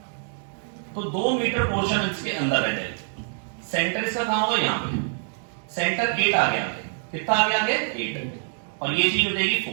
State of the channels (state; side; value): silent; left; digital silence